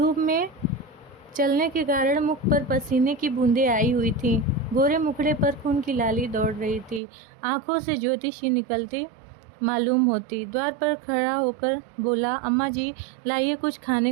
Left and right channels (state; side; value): drops out; left; at 7.0 s